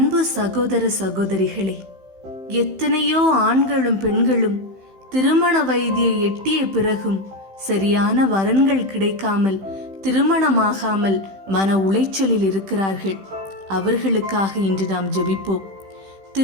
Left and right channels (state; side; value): late; left; 15 ms